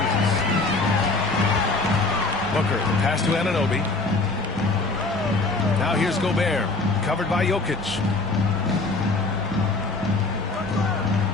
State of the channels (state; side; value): quieter; right; 3.5 dB